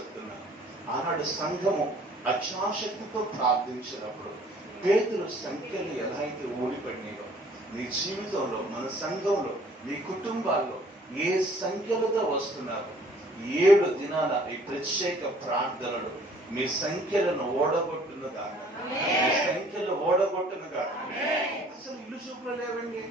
ఆనాడు సంఘము అక్షాశక్తితో ప్రార్థించినప్పుడు పేతురు సంఖ్యలు ఎలా అయితే ఓడిపడినాయో నీ జీవితంలో, మన సంఘంలో, నీ కుటుంబాల్లో ఏ సంఖ్యలుగా వస్తున్నారు 7 దినాల ఈ ప్రత్యేక ప్రార్థనలు మీ సంఖ్యలను ఓడగొట్టునుగా, మీ సంఖ్యలు ఓడగొట్టునుగా. అసలు ఇల్లు చూపులో లేవండి.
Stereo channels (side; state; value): both; normal; correlation 0.56